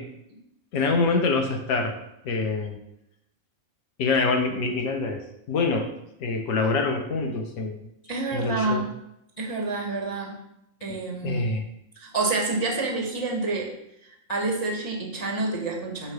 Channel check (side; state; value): right; late; 5.0 ms